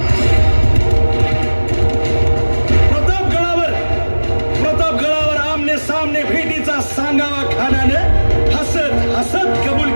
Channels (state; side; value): inverted; both; correlation -1.00